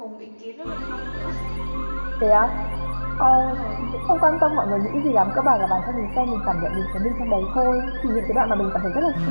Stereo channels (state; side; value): inverted; both; correlation -1.00